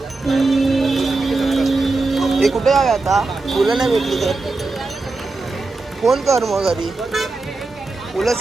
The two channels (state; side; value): quieter; left; 3.5 dB